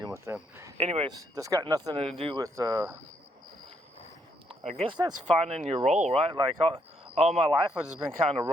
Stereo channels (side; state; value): both; normal; correlation 0.74